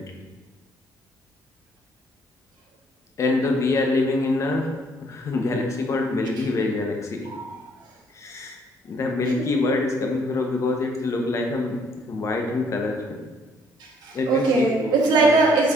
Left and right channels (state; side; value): normal; both; correlation 0.64